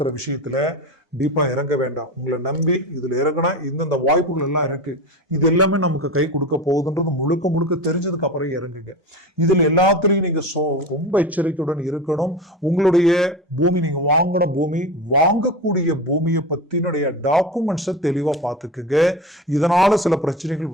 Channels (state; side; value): normal; both; correlation 0.26